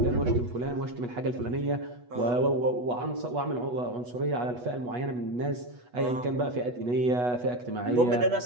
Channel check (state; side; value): late; left; 8.2 ms